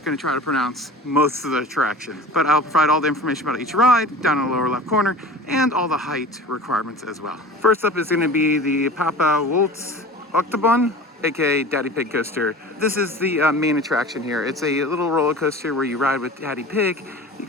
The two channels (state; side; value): normal; both; correlation 0.39